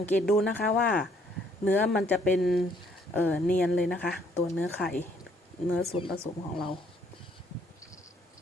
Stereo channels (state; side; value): normal; both; correlation 0.66